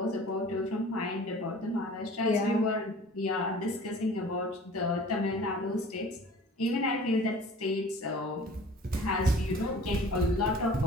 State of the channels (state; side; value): normal; both; correlation 0.45